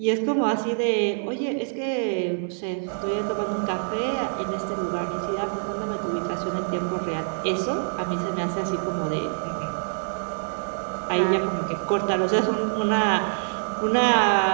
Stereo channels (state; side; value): silent; left; digital silence